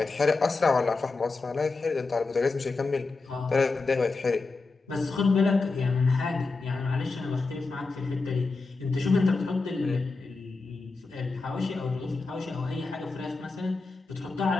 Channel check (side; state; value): right; quieter; 3.9 dB